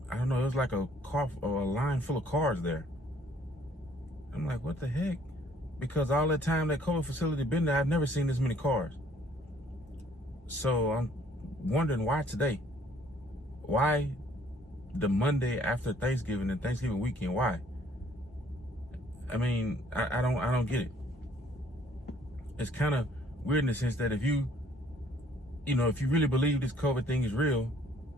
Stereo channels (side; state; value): both; normal; correlation 0.60